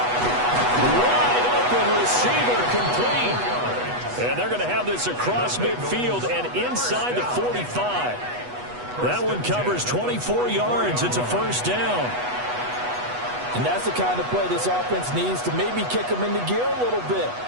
Wide open receiver complete. And they're going to have this across midfield and inside the 45. That one covers 24 yards. It's a first down. And that's the kind of play this offense needs to maybe kick them into gear a little bit.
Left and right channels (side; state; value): left; late; 8.2 ms